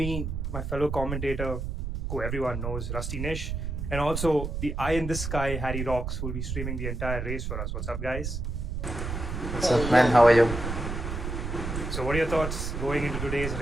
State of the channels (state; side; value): noise; right; rumble, 4 dB below the sound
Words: my fellow commentator, who everyone knows, Rusty Nish, and also the eye in the sky, Harry Rocks, who will be streaming the entire race for us. What's up, guys? What's up, man? How are you? So what are your thoughts going into today's